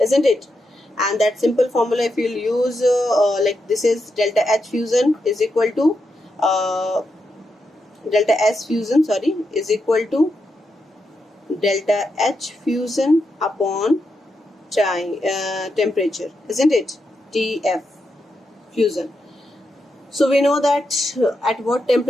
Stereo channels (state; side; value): normal; both; correlation 0.84